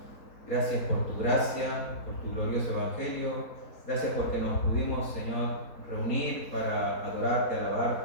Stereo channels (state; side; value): late; right; 4.2 ms